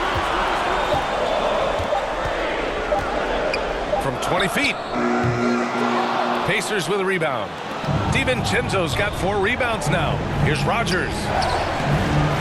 From 20 feet. Pacers with a rebound. DiVincenzo's got 4 rebounds now. Here's Rogers.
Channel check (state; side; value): identical; both; correlation 1.00